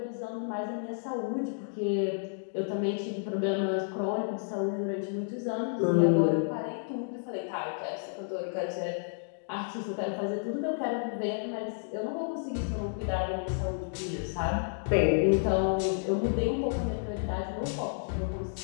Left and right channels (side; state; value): right; silent; digital silence